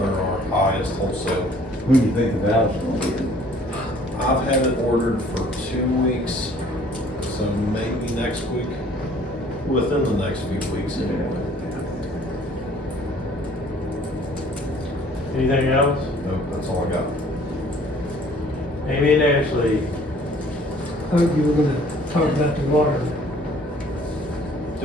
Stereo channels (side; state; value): both; normal; correlation 0.56